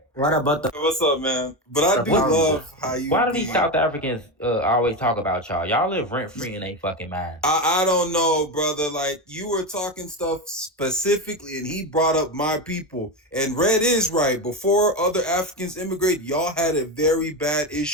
What about the? What's up, man? But I do love how you Why do be. these South Africans always talk about y'all? Y'all live rent free in they fucking mind. I don't know, brother. Like you were talking stuff specifically, and he brought up my people. And Red is right. Before other Africans immigrate, y'all had a very bad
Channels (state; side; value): normal; both; correlation 0.16